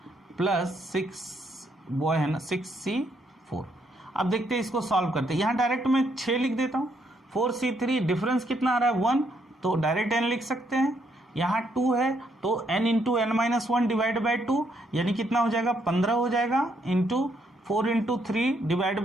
plus 6 boy है ना, 6C4. अब देखते हैं इसको सॉल्व करते हैं. यहां डायरेक्ट मैं 6 लिख देता हूं. 4C3 डिफरेंस कितना आ रहा है 1, तो डायरेक्ट n लिख सकते हैं. यहाँ 2 है तो n into N minus one divide by 2 यानी कितना हो जाएगा 15 हो जाएगा, इंटू 4 इंटू 3 डिवाइड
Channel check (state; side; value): normal; both; correlation 0.73